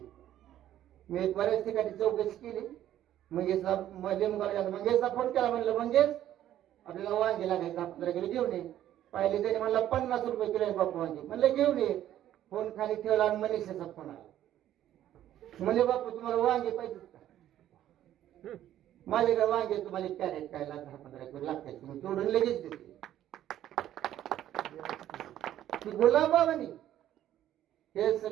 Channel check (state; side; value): quieter; left; 12.1 dB